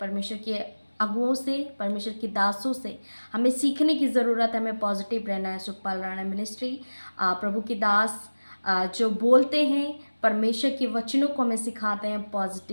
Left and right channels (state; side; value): inverted; both; correlation -1.00